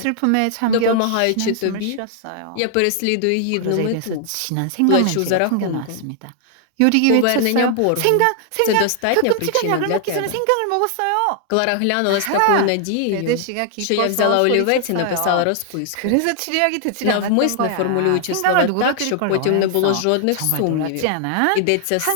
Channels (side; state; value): both; different; correlation 0.00